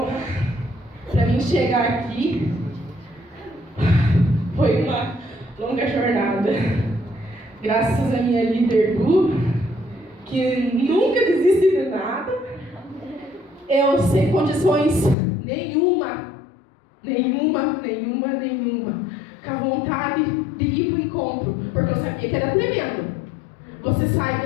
pra mim chegar aqui, foi uma longa jornada. Graças à minha líder Du, que nunca desiste de nada. Eu sem condições nenhuma, com a vontade de ir para o encontro, porque eu sabia que era tremendo. Você sai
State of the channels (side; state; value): right; drops out; at 15.2 s